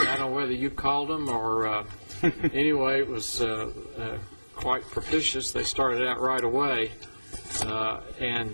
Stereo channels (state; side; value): inverted; both; correlation -1.00